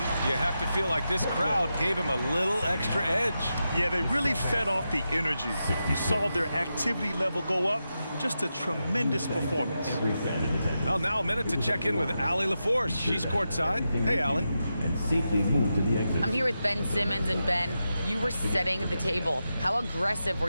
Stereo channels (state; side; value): inverted; both; correlation -0.89